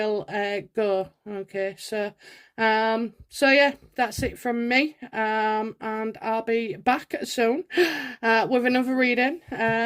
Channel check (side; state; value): both; identical; correlation 1.00